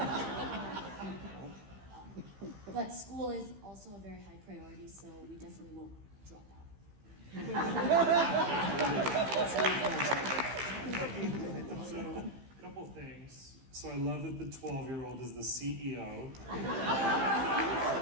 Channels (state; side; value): late; left; 15 ms